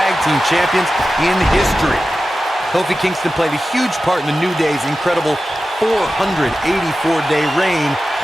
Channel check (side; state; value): both; normal; correlation 0.94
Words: Team Champions in history. Kofi Kingston played a huge part in the New Day's incredible 484-day reign